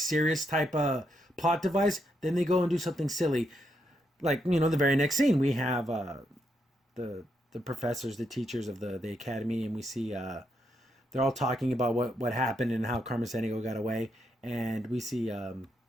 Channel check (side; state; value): both; normal; correlation 0.80